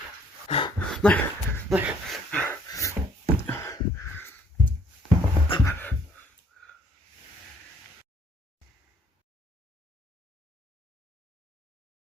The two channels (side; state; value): both; normal; correlation 0.62